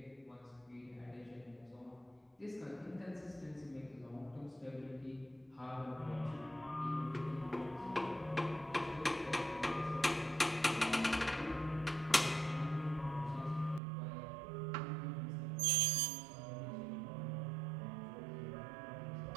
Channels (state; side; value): drops out; left; at 13.8 s